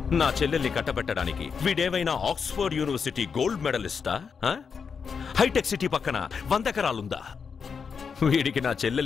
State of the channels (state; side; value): quieter; right; 6.0 dB